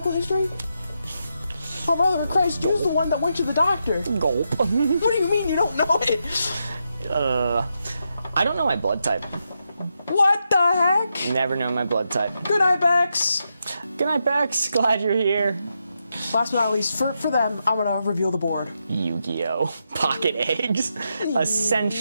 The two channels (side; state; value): both; inverted; correlation -0.84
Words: history? Oh, brother of Christ, who's the one that went to the doctor? Gulp. What do you mean you don't know it? I don't know my blood type. What the heck? Never know my blood type. Good night, Bex. Good night, Bex. Glad you're here. Last but not least, for them, I'm gonna reveal the board. Yu-Gi-Oh! Pocket eggs.